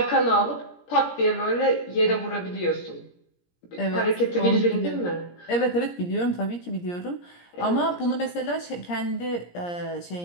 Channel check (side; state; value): right; late; 17 ms